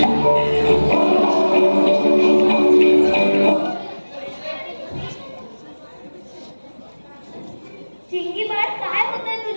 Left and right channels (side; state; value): both; inverted; correlation -1.00